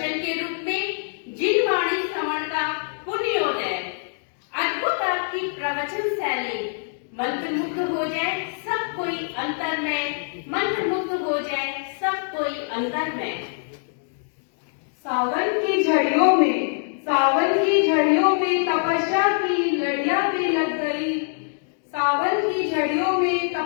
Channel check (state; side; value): silent; right; digital silence